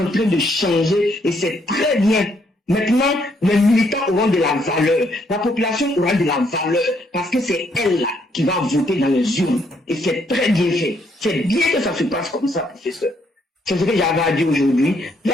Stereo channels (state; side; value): normal; both; correlation 0.72